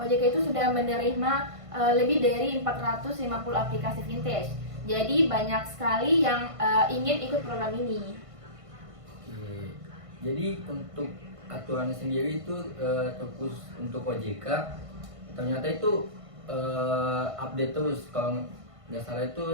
itu sudah menerima lebih dari 450 aplikasi fintech. Jadi banyak sekali yang ingin ikut program ini. Oke. Jadi untuk aturannya sendiri itu terkhusus untuk OJK ternyata itu update terus, kalau nggak salah itu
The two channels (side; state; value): left; late; 1.5 ms